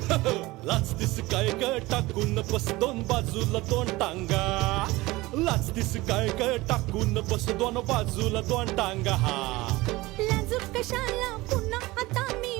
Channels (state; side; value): quieter; left; 20.3 dB